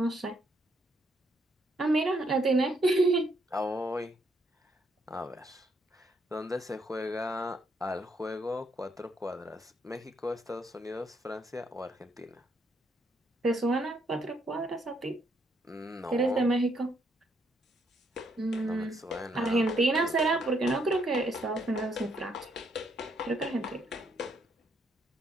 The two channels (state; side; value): normal; both; correlation 0.73